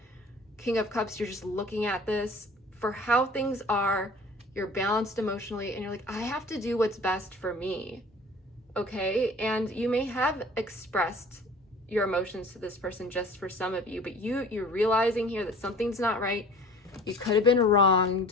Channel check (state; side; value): normal; both; correlation 0.46